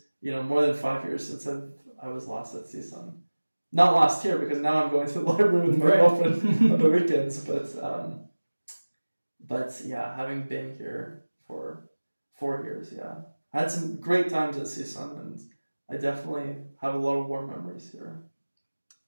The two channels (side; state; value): both; inverted; correlation -1.00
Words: more than 5 years since I was last at CSUN. Not last year, because now I'm going to the library with my girlfriend on the weekends, but yeah, having been here for 4 years, yeah. I had some great times at CSUN, and I definitely have a lot of warm memories here.